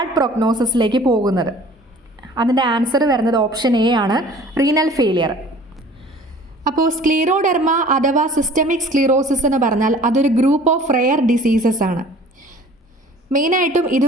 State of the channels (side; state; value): both; normal; correlation 0.48